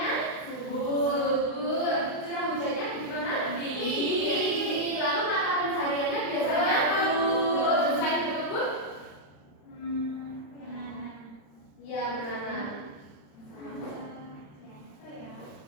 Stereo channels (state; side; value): late; right; 35 ms